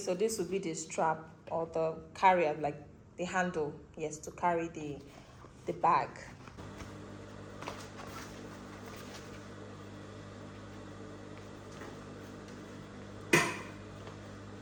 this will be the strap or the carrier, like the handle, yes, to carry the bag.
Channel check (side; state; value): both; identical; correlation 1.00